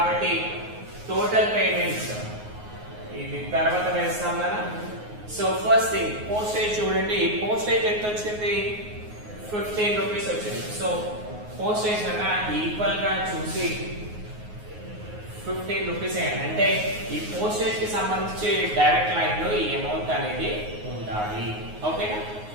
టోటల్ పేమెంట్స్ ఇది తర్వాత వేస్తాం కదా. సో ఫస్ట్ థింగ్ పోస్టేజ్ చూడండి, పోస్టేజ్ ఎంత వచ్చింది, 15 రూపీస్ వచ్చింది. సో పోస్టేజ్ అన్న ఈక్వల్ గా చూసి 15 రూపీస్ అంటే ఈ పోస్టేజ్ కి సంబంధించి డైరెక్ట్ లైన్ లో ఈ అమౌంట్ అనేది ఉండాలి. ఓకేనా.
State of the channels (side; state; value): left; late; 9.5 ms